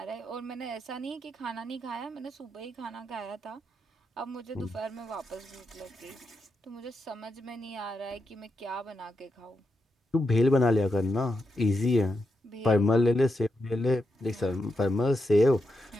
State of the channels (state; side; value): normal; both; correlation 0.85